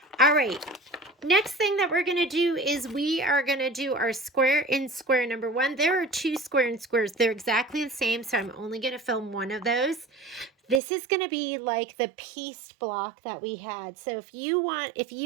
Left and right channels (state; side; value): drops out; left; at 10.8 s